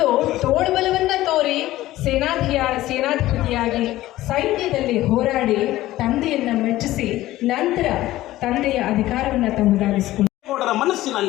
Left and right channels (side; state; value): right; quieter; 15.9 dB